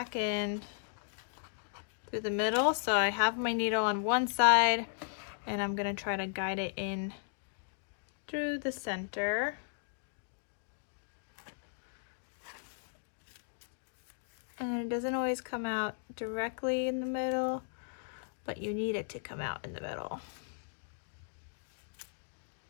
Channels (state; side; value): silent; right; digital silence